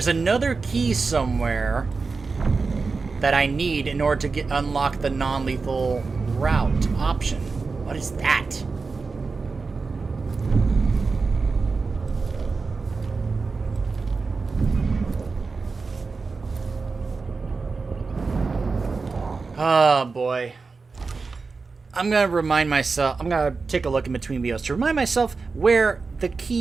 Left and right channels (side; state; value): left; quieter; 4.4 dB